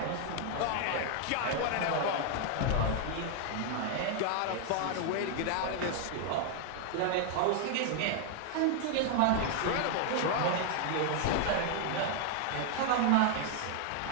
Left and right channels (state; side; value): different; both; correlation 0.00